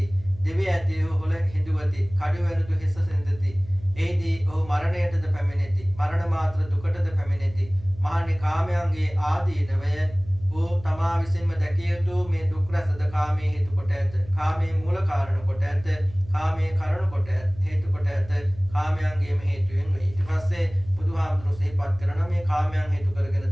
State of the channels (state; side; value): noise; right; hum, 18 dB below the sound